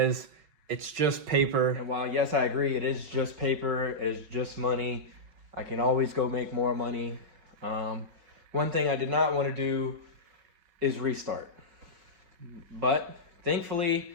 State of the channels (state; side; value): late; left; 5.4 ms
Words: it's just paper. And while yes, I agree, it is just paper, it is just money. I can always go make more money. One thing I did not want to do is restart. But